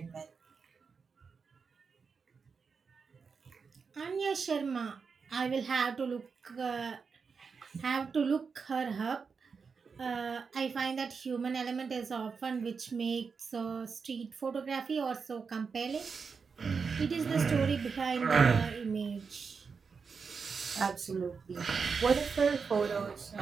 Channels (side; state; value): left; quieter; 5.4 dB